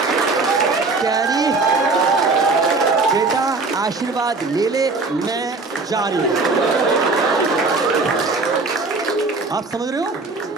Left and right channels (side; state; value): left; quieter; 3.7 dB